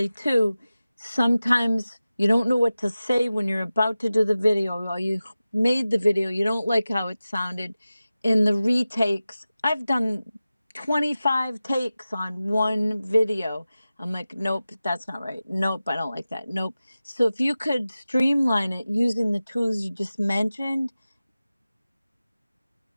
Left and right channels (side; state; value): both; inverted; correlation -0.95